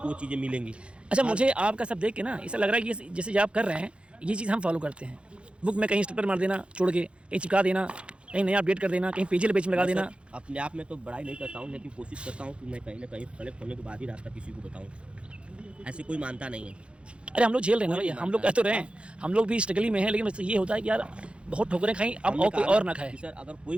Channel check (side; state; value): left; late; 0.058 ms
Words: वो चीज़ें मिलेंगी। अच्छा, मुझे आपका सब देख के ना ऐसा लग रहा है कि जैसे आप कर रहे हैं ये चीज़ हम फॉलो करते हैं। बुक में कहीं स्टिकर मार देना, छोड़ के कहीं चिपका देना, कहीं नया अपडेट कर देना, कहीं पेज में लगा देना। अपने आप में तो बड़ाई नहीं करता हूँ, लेकिन कोशिश करता हूँ कि मैं कहीं ना कहीं कलेक्ट होने के बाद ही रास्ता किसी को बताऊँ। ऐसे कोई मानता नहीं है। अरे हम लोग झेल रहे हैं ना भैया, हम लोग कह तो रहे हैं, हम लोग भी स्ट्रगल में हैं, लेकिन ये होता है कि यार बहुत ठोकरें खाई, अब और कोई और ना खाए। सर अगर कोई